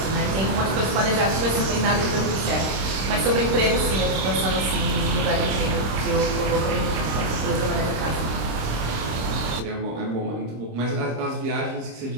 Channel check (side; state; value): left; late; 26 ms